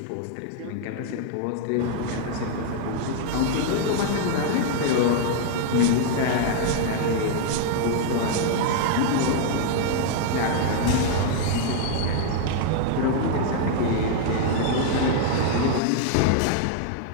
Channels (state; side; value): different; both; correlation 0.00